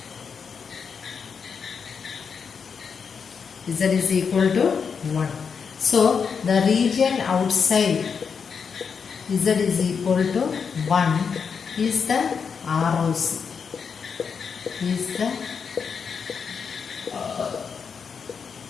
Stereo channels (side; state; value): right; quieter; 6.1 dB